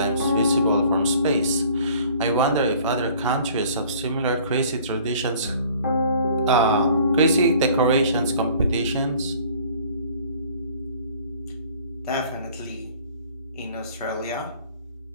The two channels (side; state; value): both; inverted; correlation -0.52